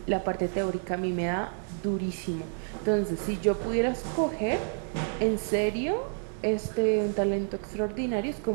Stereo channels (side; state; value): left; silent; digital silence